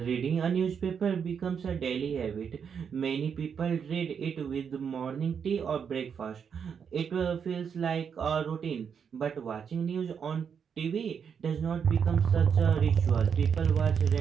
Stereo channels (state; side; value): quieter; left; 7.0 dB